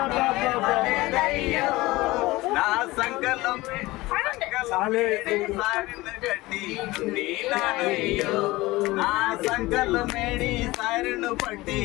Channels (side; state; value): right; quieter; 19.8 dB